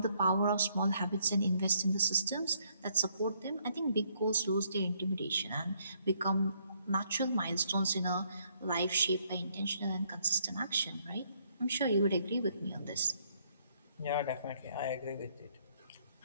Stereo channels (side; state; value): both; inverted; correlation -0.69